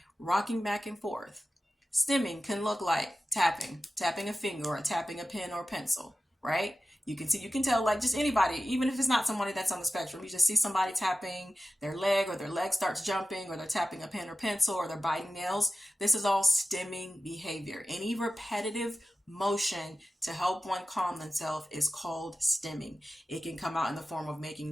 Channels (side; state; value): both; normal; correlation 0.94